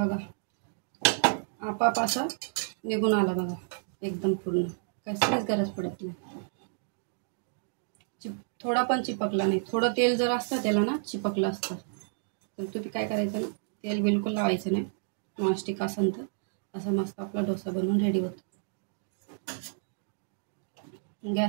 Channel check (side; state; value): left; silent; digital silence